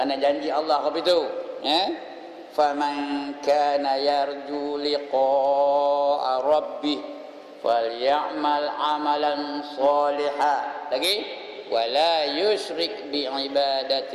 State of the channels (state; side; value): identical; both; correlation 1.00